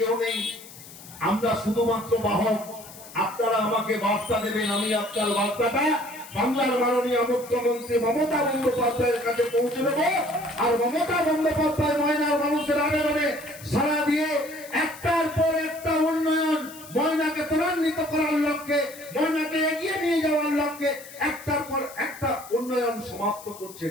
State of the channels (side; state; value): left; noise; hiss, 17 dB below the sound